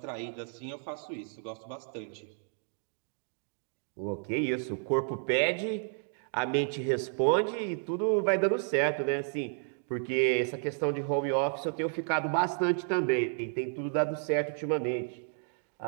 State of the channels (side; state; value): left; silent; 57 dB below the other